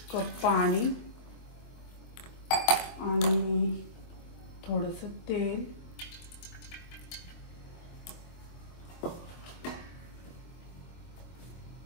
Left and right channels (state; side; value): late; right; 24 ms